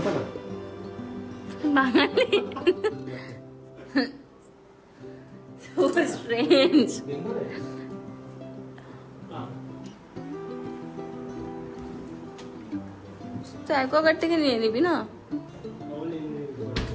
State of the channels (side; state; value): both; identical; correlation 1.00